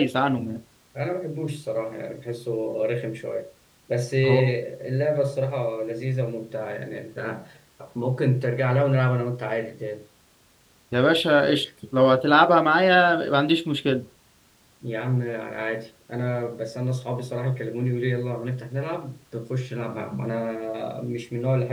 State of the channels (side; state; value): both; identical; correlation 1.00